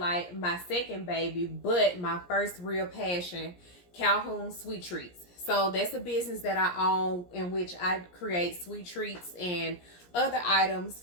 my second baby, but my first real passion, Calhoun Sweet Treats. So that's a business that I own in which I create sweet treats and other items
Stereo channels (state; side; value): late; right; 17 ms